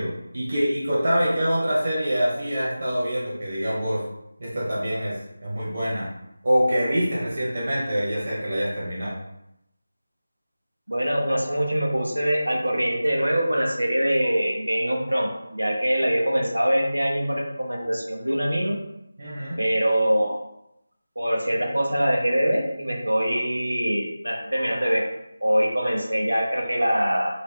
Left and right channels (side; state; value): both; inverted; correlation -0.96